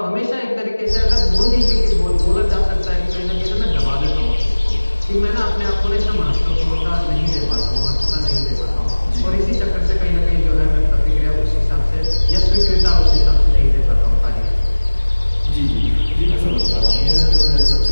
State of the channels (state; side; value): inverted; both; correlation -1.00